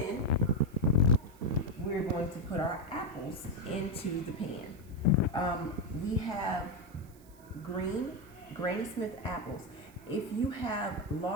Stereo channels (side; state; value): right; noise; hiss, 27 dB below the sound